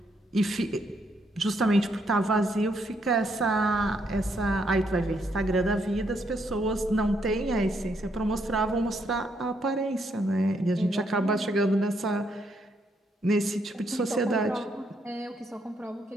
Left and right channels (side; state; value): both; normal; correlation 0.75